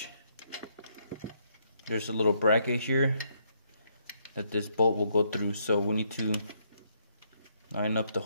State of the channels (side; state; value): both; inverted; correlation -0.73